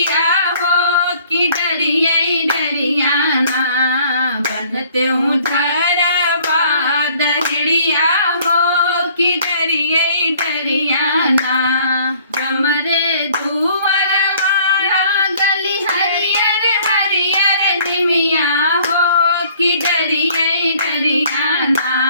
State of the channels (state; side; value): inverted; both; correlation -0.57